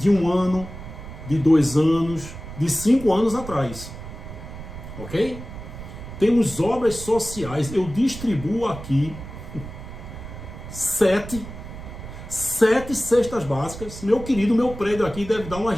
1 ano, de 2 anos, de 5 anos atrás. Ok? Temos obras sociais. Eu distribuo aqui 7 cestas básicas. Meu querido, meu prédio aqui deve dar umas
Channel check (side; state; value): right; noise; rumble, 12 dB below the sound